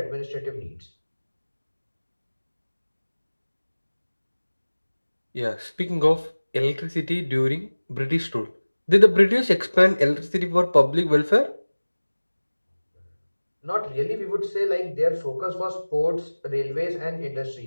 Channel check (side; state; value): both; inverted; correlation -1.00